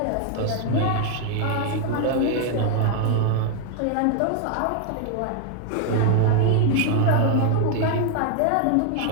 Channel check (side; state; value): both; different; correlation 0.00